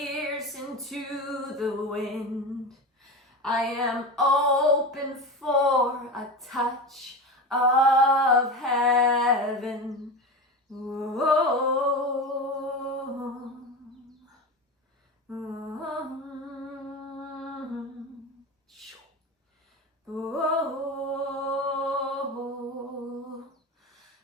into the wind. I am open for a touch of heaven. Oh,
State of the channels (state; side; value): normal; both; correlation 0.25